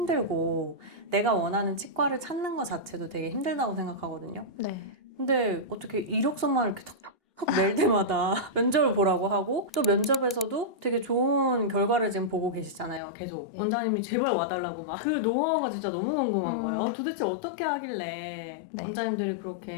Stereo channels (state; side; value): drops out; right; at 13.0 s